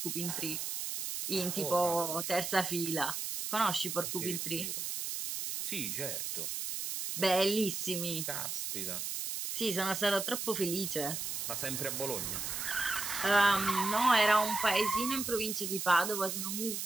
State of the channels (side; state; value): right; noise; hiss, 3 dB below the sound